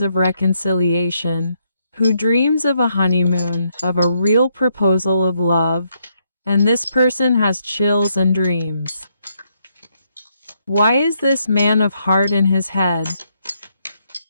of reconciliation, who dreams of a honeymoon, of a real proposal of love, and this person has chills and dreams. Why is this man of heart in his head?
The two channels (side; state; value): both; inverted; correlation -0.76